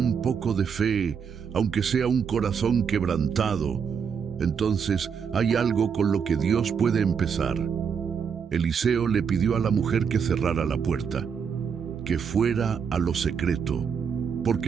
poco de fe, aunque sea un corazón quebrantado, entonces hay algo con lo que Dios puede empezar. Eliseo le pidió a la mujer que cerrara la puerta, que fuera a lo secreto,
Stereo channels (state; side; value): quieter; left; 6.7 dB